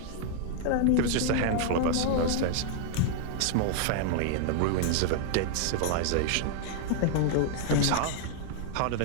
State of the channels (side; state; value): both; different; correlation 0.00